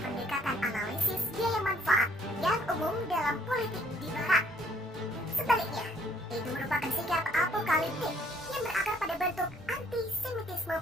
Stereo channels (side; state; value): both; normal; correlation 0.63